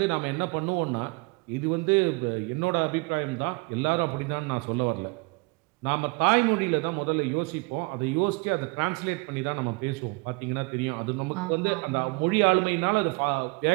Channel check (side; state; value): left; quieter; 28.6 dB